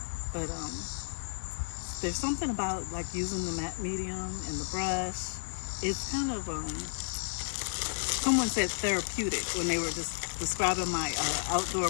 but there's something about like using the matte medium and the brush. It's kind of someone said therapeutic when they were just describing my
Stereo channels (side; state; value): right; silent; digital silence